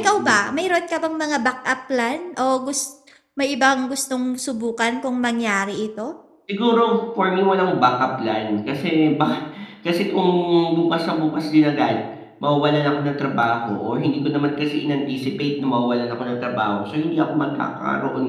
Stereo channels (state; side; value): identical; both; correlation 1.00